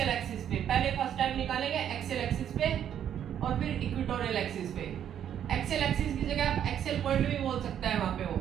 पे। पहले फर्स्ट टाइम निकालेंगे एक्सियल एक्सिस पे और फिर इक्वेटोरियल एक्सिस पे। एक्सियल एक्सिस की जगह आप एक्सियल पॉइंट भी बोल सकता है, वहां पे वो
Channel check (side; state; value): left; quieter; 9.7 dB